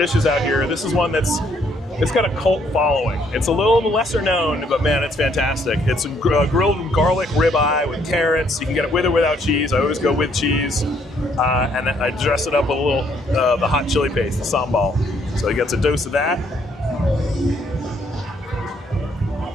out here, this is one it's got a cult following. It's a little lesser known, but man, it's fantastic. It's a grilled garlic ribeye with carrots. You can get it with or without cheese. I always go with cheese. And I dress it up with a little, the hot chili paste, the sambal. So it gets a dose of that.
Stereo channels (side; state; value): both; normal; correlation 0.68